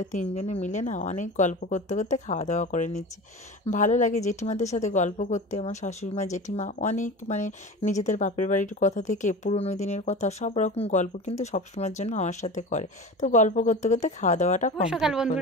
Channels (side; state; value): both; normal; correlation 0.32